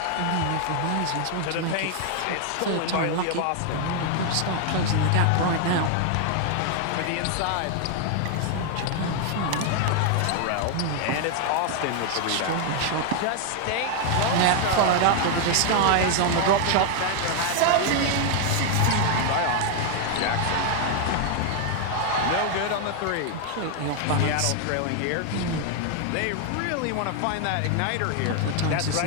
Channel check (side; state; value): both; different; correlation 0.00